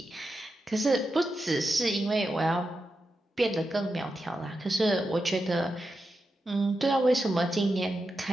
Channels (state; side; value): normal; both; correlation 0.88